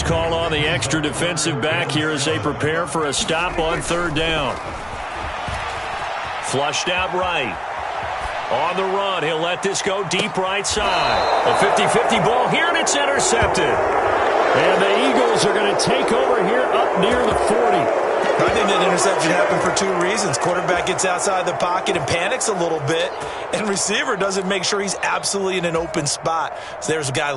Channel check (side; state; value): both; identical; correlation 1.00